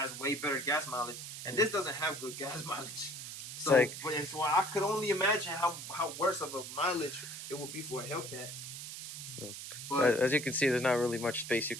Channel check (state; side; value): noise; right; hiss, 9 dB below the sound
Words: way better gas mileage, and this doesn't have good gas mileage. So, so I could only imagine how worse of a mileage it would be for a Hellcat. But as you can see, there's not really much space you